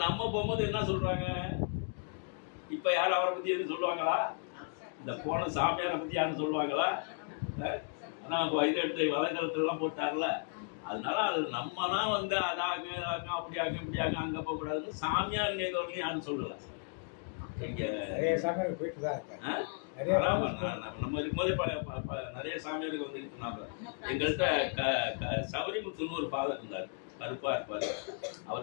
நம்ம போகும்போது என்ன சொல்றாங்க, இப்ப யாரும் அவரை பத்தி எதுவும் சொல்லுவாங்களா? இந்த போன சாமியாரை பத்தி யாரும் சொல்லுவாங்களா? ஆனா இதை எடுத்து வலைதளத்துல எல்லாம் போட்டார்ல, அதனால அது நம்ம தான் வந்து அதாங்க அப்படி ஆகும் இப்படி ஆகும் அங்க போக கூடாதுன்னு சாமியார் நேர்வரையும் யாரும் சொல்லல. நம்ம இருக்கும்போதே நிறைய சாமியாருக்கு வந்து இருந்தாங்க. எங்கள்கிட்ட சபரிமுத்துன்னு ஒரு ஃபாதர் இருந்தார், கருப்பா இருப்பாரு.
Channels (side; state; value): right; silent; 55 dB below the other